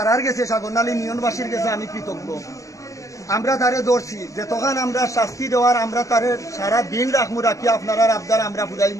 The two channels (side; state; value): right; late; 0.16 ms